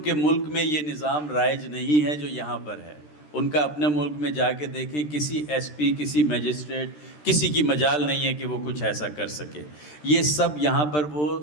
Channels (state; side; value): late; right; 13 ms